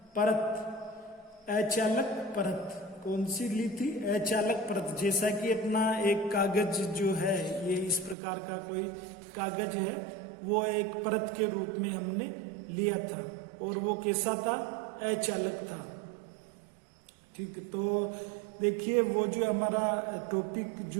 परत, अचालक परत, कौन सी ली थी, अचालक परत। जैसा कि अपना एक कागज जो है, ये इस प्रकार का कोई कागज है, वो एक परत के रूप में हमने लिया था और वो कैसा था, अचालक था। ठीक, तो देखिए वो जो हमारा टॉपिक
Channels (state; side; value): drops out; left; at 8.2 s